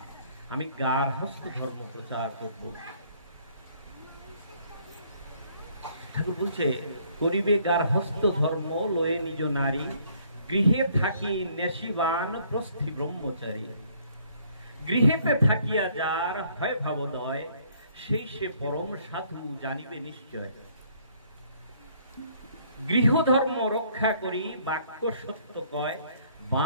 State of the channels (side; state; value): both; inverted; correlation -0.63